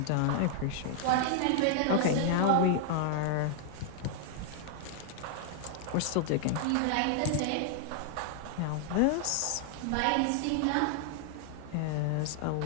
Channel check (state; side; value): different; both; correlation -0.01